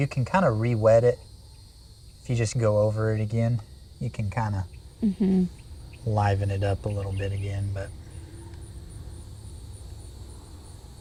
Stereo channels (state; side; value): identical; both; correlation 1.00